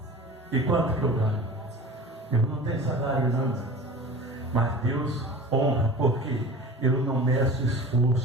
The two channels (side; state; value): both; normal; correlation 0.38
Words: E quanto que eu ganho? Eu não tenho salário não, mas Deus honra, porque eu não meço